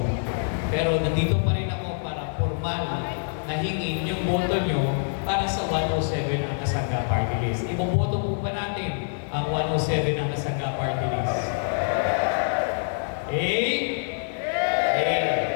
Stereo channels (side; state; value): right; silent; digital silence